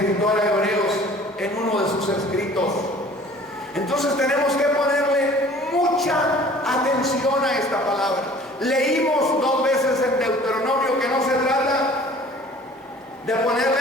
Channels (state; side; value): normal; both; correlation 0.49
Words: a Hebreos en uno de sus escritos. Entonces tenemos que ponerle mucha atención a esta palabra. Leímos 2 veces en Deuteronomio que no se trata de ponerle